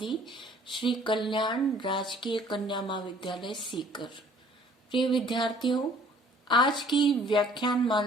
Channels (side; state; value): both; normal; correlation 0.56